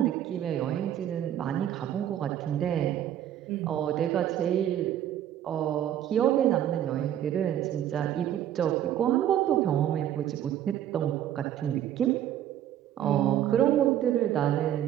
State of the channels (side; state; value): left; quieter; 11.1 dB